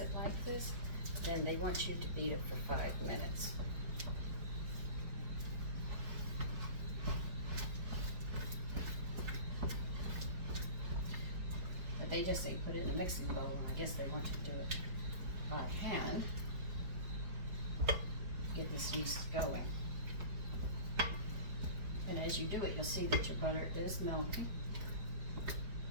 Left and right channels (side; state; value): left; late; 4.8 ms